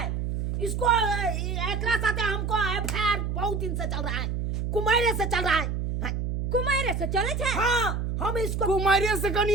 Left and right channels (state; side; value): noise; right; hum, 2 dB below the sound